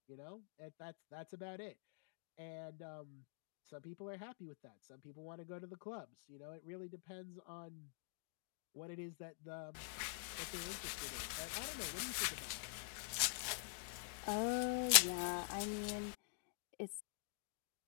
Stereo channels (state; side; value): silent; right; digital silence